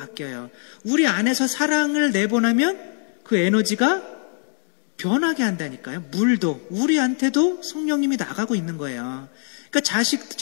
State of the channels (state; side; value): silent; right; 55 dB below the other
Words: 우리 안에서 사랑을 내보내면 그 에너지가 변하게 한다니까요. 물도 우리한테도 성령님이 나가고 있는 거예요. 그러니까